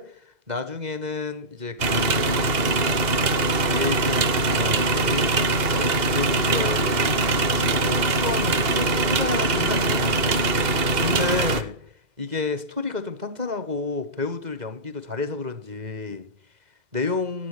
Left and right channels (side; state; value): left; late; 2.0 ms